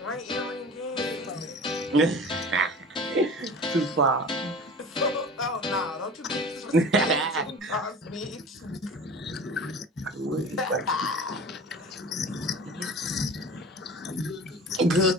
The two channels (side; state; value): both; normal; correlation 0.39